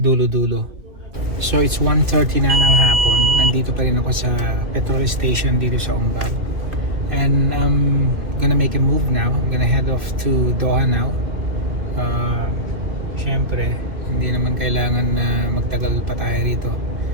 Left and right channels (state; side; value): late; left; 2.2 ms